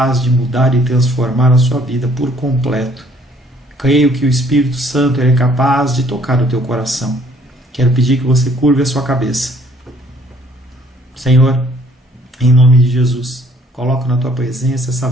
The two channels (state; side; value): normal; both; correlation 0.61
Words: de mudar e transformar a sua vida por completo. Creio que o Espírito Santo Ele é capaz de tocar o teu coração. Quero pedir que você curve a sua cabeça. Senhor, em nome de Jesus, coloco na tua presença essa